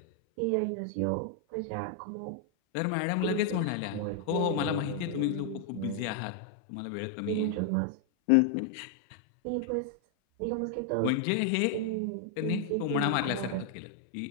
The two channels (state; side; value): different; both; correlation 0.00